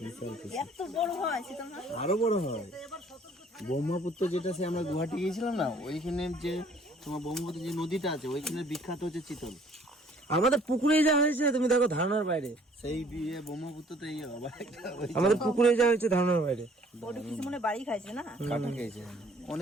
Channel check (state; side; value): normal; both; correlation 0.57